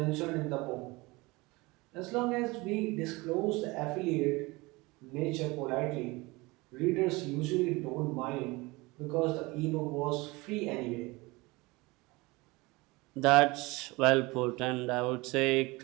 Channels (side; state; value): left; quieter; 23.4 dB